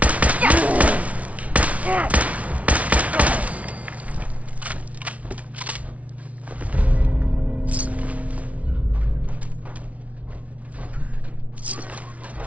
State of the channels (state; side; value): late; left; 0.066 ms